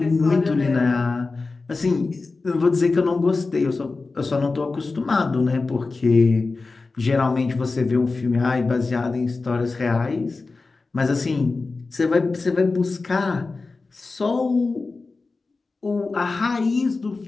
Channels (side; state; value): right; quieter; 3.8 dB